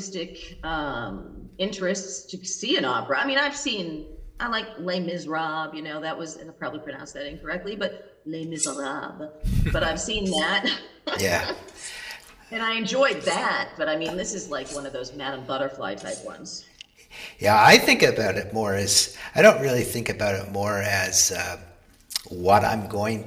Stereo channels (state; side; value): identical; both; correlation 1.00